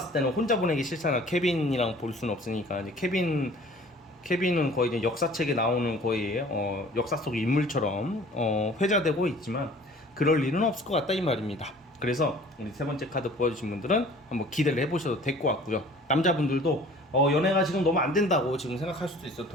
때는 혼자 보내기 싫잖아. 케빈이랑 볼 수는 없으니까. 이제 케빈은 거의 이제 역사책에 나오는 거의 역사 속 인물처럼 회자되고 있지만 그럴 일은 없을 것 같다 이 말입니다. 그래서 우리 세 번째 카드 보여주신 분들은 한번 기대를 해보셔도 될 것 같고요. 남자분들도 연애가 지금 너무 안 된다고 지금 생각할 수도 있어요.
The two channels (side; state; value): both; normal; correlation 0.49